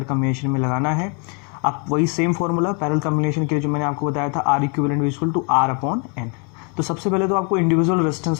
combination में लगाना है। अब वही सेम फॉर्मूला पैरेलल कॉम्बिनेशन के लिए जो मैंने आपको बताया था, R equivalent equal to R/N। तो सबसे पहले तो आपको इंडिविजुअल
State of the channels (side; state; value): right; quieter; 36.2 dB